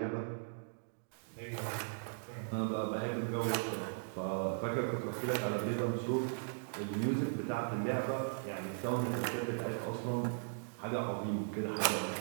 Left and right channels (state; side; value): silent; left; digital silence